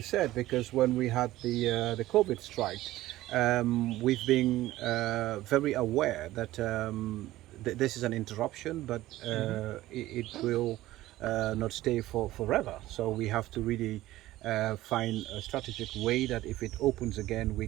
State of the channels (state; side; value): quieter; left; 16.1 dB